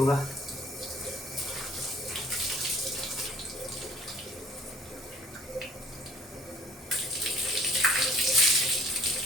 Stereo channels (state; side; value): normal; both; correlation 0.55